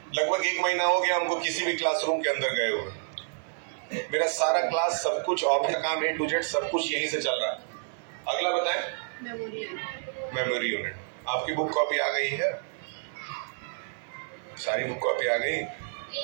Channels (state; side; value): silent; left; digital silence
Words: लगभग 1 महीना हो गया हमको किसी भी क्लासरूम के अंदर गए हुए। मेरा सारा क्लास, सब कुछ, ऑफिस काम A to Z सब कुछ यहीं से चल रहा है। अगला बताएं। Memory unit. आपकी बुक कॉपी आ गई है? सारी बुक कॉपी आ गई?